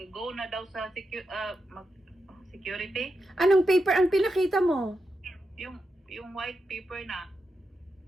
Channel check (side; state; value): both; normal; correlation 0.87